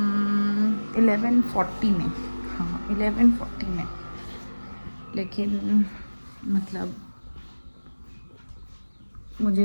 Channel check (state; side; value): inverted; both; correlation -1.00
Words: 11:40 में, हाँ 11:40 में, लेकिन मतलब